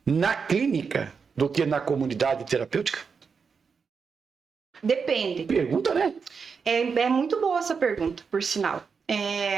na clínica do que na comunidade terapêutica? Depende. Pergunta, né? É muito boa essa pergunta, por sinal.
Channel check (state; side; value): quieter; left; 5.7 dB